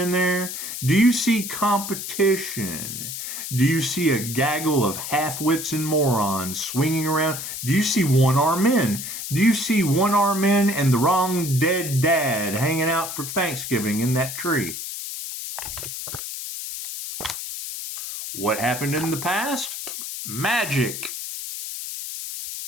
there? Do you see competition? Do you see a gaggle of half-wits and morons swinging around? Do you see one-armed men? Do you see one-armed men and the wrong dead dad hanging out for Thanksgiving in that tree? What happened in the past? Magic.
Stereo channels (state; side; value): noise; left; hiss, 7 dB below the sound